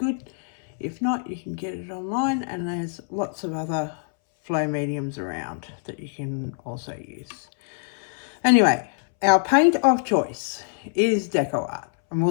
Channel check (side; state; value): right; silent; 62 dB below the other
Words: If not, you can get it online, and there's lots of other flow mediums around that you can also use. Anyway, our paint of choice is Deco Art, and